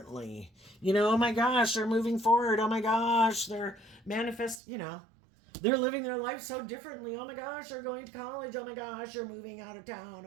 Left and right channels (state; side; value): drops out; left; at 4.6 s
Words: Oh my gosh, they're moving forward. Oh my gosh, they're they're living their life so differently. Oh my gosh, they're going to college. Oh my gosh, they're moving out of town.